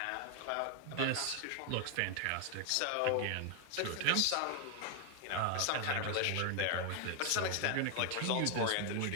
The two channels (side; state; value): both; different; correlation 0.00